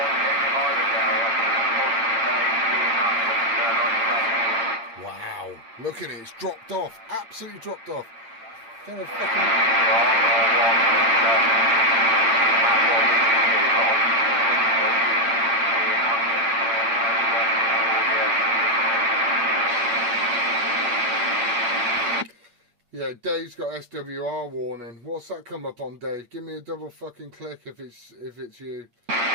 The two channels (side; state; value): left; late; 8.7 ms